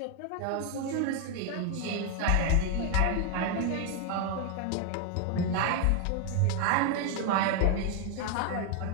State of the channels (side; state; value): both; different; correlation 0.01